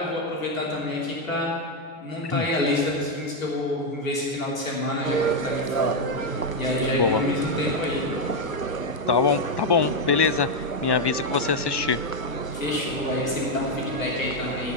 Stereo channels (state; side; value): late; right; 1.2 ms